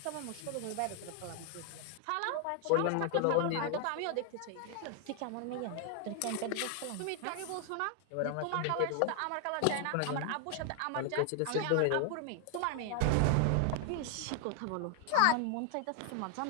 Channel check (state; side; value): different; both; correlation 0.00